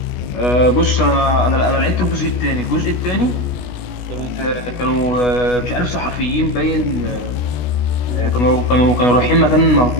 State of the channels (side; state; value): right; late; 16 ms